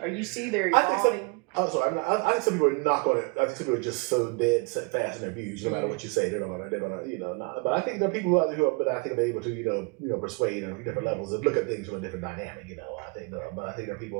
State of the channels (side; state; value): left; quieter; 31.1 dB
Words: you see they're evolving? I think some people are not going to. I think some people are just so dead set fast in their views. No matter what you say, they're gonna, you know. Not, but I think there are people who are, but I think they're able to, you know, persuade on different levels and look at things from a different dynamic. You know, but I think there are